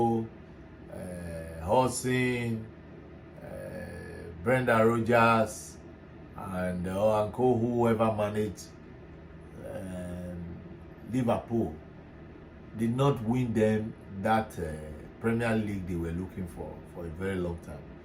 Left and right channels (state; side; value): identical; both; correlation 1.00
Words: Hodgson, Brendan Rodgers, and co, whoever managed Liverpool, did not win them that Premier League they were looking for a very long time.